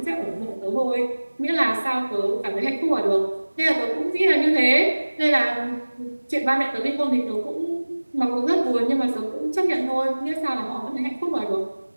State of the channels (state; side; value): inverted; both; correlation -1.00